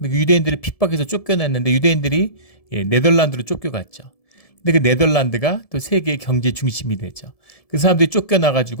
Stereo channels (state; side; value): late; right; 1.7 ms